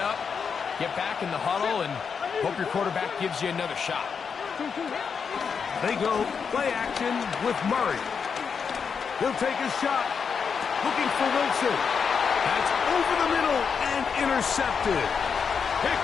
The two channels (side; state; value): right; quieter; 6.2 dB